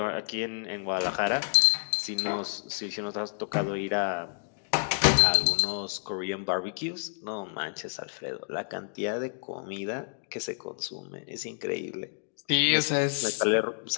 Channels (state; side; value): silent; right; digital silence